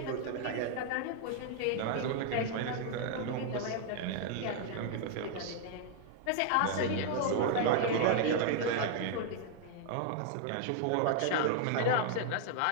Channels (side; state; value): both; different; correlation 0.00